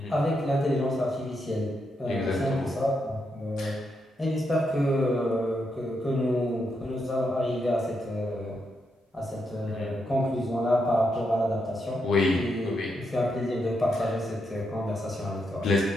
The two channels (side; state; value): both; normal; correlation 0.82